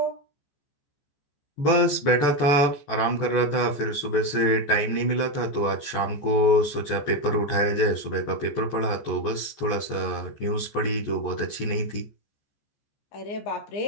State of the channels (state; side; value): late; right; 14 ms